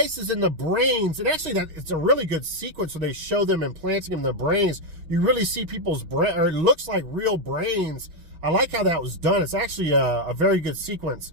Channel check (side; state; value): left; late; 6.2 ms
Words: in the brains, and actually it's a really good sequence where they show them implanting them in the brains. You really see people's brain, or it looks like real brains. I like how that was done. It's actually a very good sequence.